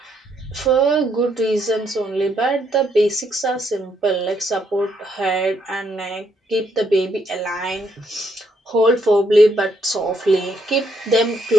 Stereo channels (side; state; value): both; normal; correlation 0.73